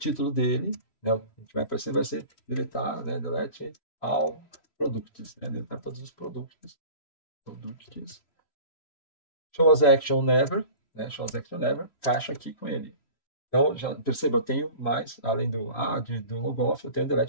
dele, né, o que vai aparecer vai ser deletar, né, delete all products, né, deletar todos os produtos. Products. Shows action never, né? Shows action never, caixa aqui com ele. Então, já perceba, eu tenho mais, além do logoff, eu tenho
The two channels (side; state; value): right; late; 3.0 ms